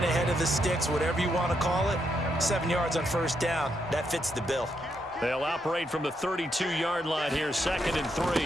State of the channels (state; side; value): normal; both; correlation 0.79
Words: ahead of the sticks, whatever you want to call it, 7 yards on first down, that fits the bill. They'll operate from the 32-yard line here, 2nd and